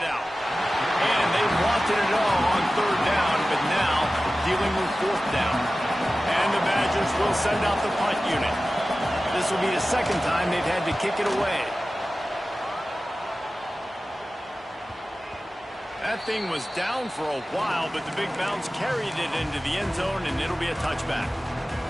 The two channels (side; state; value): both; normal; correlation 0.96